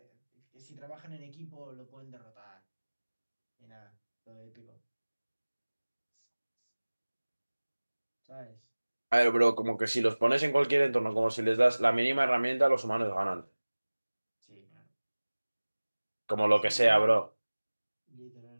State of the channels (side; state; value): both; inverted; correlation -1.00